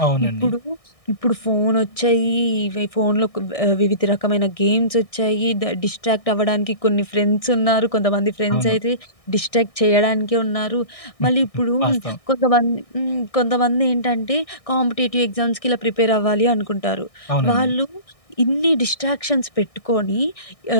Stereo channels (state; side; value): late; right; 1.6 ms